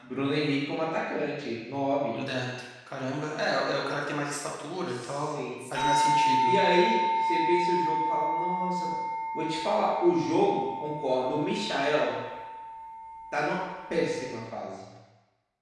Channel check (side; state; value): both; identical; correlation 1.00